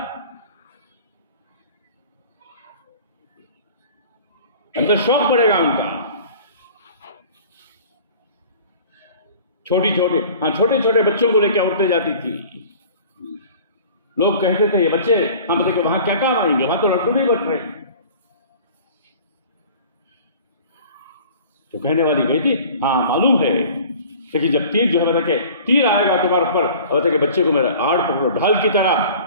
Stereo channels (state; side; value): inverted; both; correlation -0.45